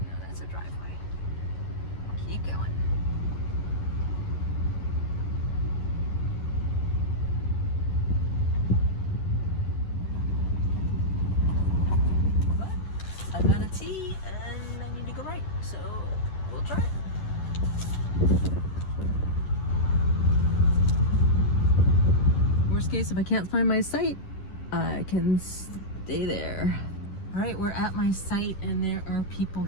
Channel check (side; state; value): right; late; 11 ms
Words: No, that's a driveway. Keep going. we'll try. Worst case, if I can't find my site, I can stay there. All right, we're at my site and there are people